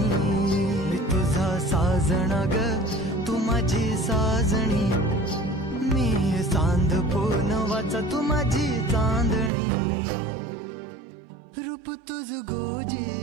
मी तुझा साजण ग तू माझी साजणी मी चांद पूनवाचा तू माझी चांदणी रूप तुझ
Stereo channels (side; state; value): left; drops out; at 9.5 s